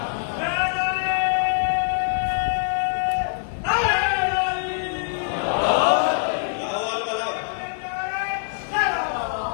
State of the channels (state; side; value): silent; right; digital silence